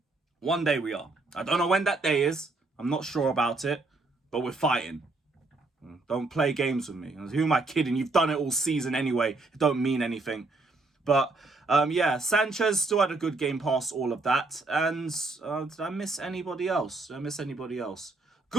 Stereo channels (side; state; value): left; quieter; 3.3 dB